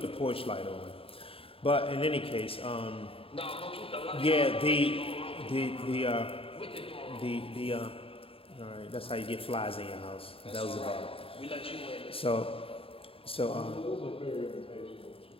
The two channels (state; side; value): late; right; 0.27 ms